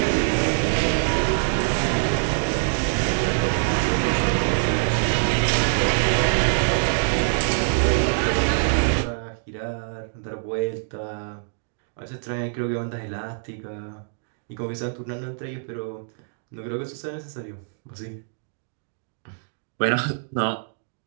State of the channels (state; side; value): silent; left; digital silence